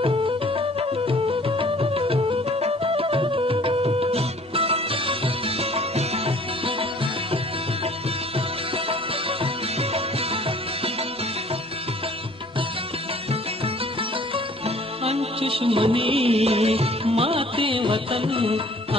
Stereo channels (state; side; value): normal; both; correlation 0.53